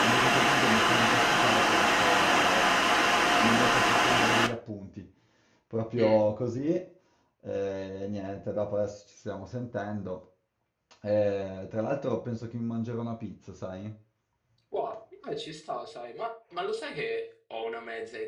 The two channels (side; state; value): both; identical; correlation 1.00